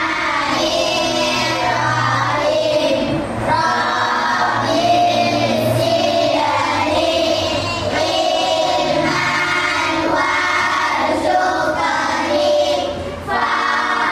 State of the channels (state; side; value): identical; both; correlation 1.00